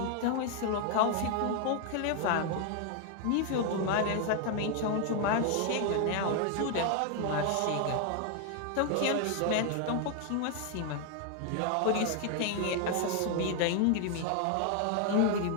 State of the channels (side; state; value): both; different; correlation 0.00